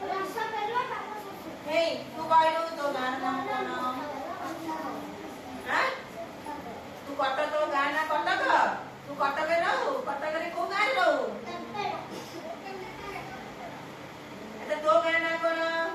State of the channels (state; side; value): identical; both; correlation 1.00